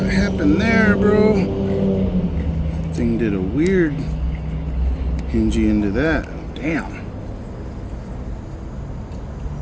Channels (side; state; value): both; identical; correlation 1.00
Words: happened there, bro? Thing did a weird hingy into that. Damn.